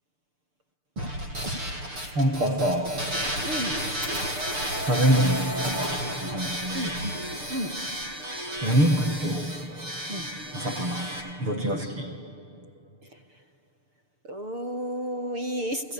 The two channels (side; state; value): left; late; 6.7 ms